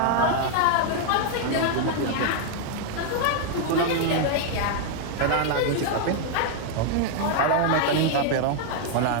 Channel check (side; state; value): both; different; correlation 0.00